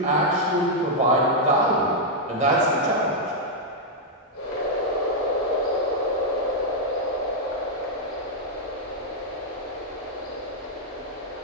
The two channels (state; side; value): normal; both; correlation -0.04